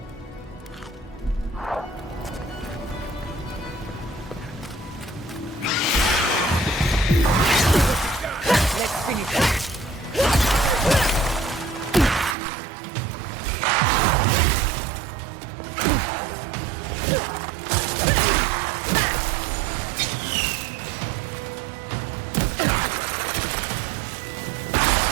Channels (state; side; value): drops out; left; at 12.4 s